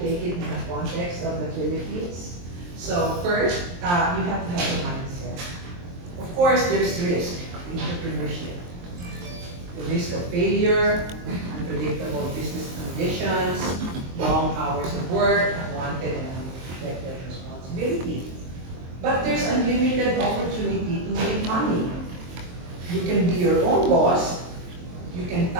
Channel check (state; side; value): late; left; 23 ms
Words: take it in the context of the Philippines. So first, you have to have a mindset. Of course, there's risk in entrepreneurship. The risk of failure, unpredictable business conditions, long hours of work, unwanted and unexpected responsibility. But there's unlimited opportunity to make money. You can be your own boss, you can